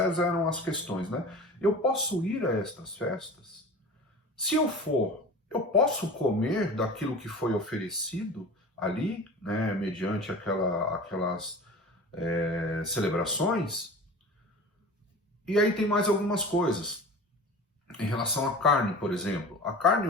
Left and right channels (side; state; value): both; normal; correlation 0.36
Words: eram as questões, né? Eu posso ir a estas festas? Se eu for, eu posso comer daquilo que foi oferecido ali, né, mediante aquelas celebrações? E aí tem mais algumas coisas. Em relação à carne, por exemplo, a carne